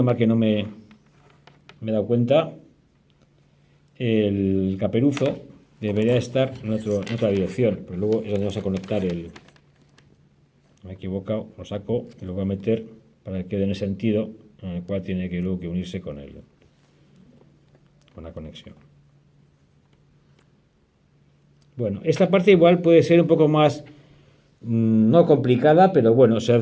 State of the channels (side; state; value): both; identical; correlation 1.00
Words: mal que no me he dado cuenta, el caperuzo debería estar en otra dirección, pero luego es donde vamos a conectar me he equivocado, lo saco y lo voy a meter para que quede en el sentido en el cual tiene que luego unirse con la conexión. Bueno, esta parte igual puede ser un poco más, no complicada, pero bueno, se